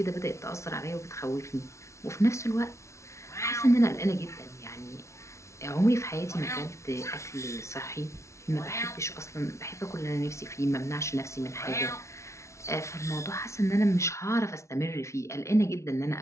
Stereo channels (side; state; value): right; late; 0.14 ms